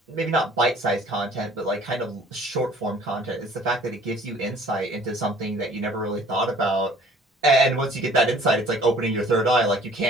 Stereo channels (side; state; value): both; normal; correlation 0.53